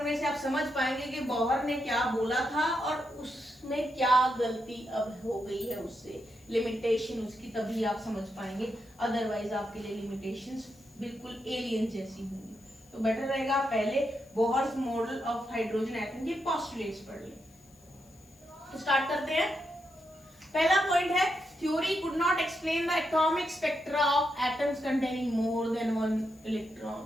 से आप समझ पाएंगे कि बोहर ने क्या बोला था और उसमें क्या गलती अब हो गई है उससे, लिमिटेशन उसकी, तभी आप समझ पाएंगे। अदरवाइज आपके लिए लिमिटेशंस बिल्कुल एलियन जैसी होंगी। तो बेटर रहेगा पहले Bohr's model of hydrogen atom के पोस्टुलेट्स पढ़ लें। तो स्टार्ट करते हैं। पहला पॉइंट है, theory could not explain the atomic spectra of atoms containing more than one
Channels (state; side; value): noise; left; hiss, 29 dB below the sound